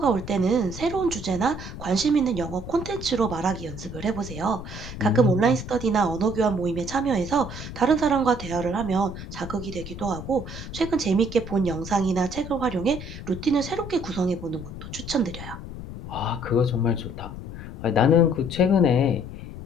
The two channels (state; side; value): noise; left; rumble, 10 dB below the sound